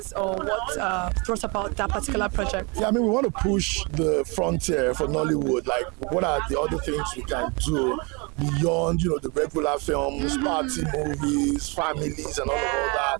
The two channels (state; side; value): quieter; left; 30.1 dB